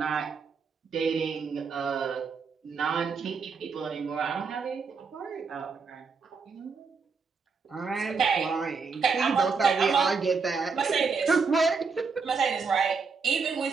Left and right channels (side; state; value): left; quieter; 5.1 dB